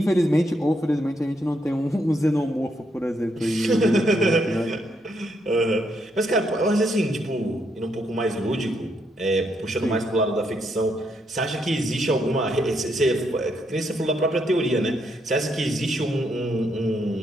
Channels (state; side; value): normal; both; correlation 0.77